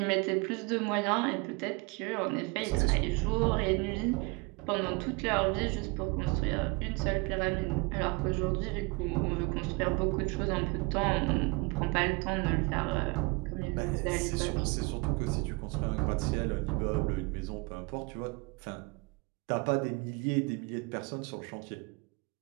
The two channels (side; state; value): left; quieter; 28.0 dB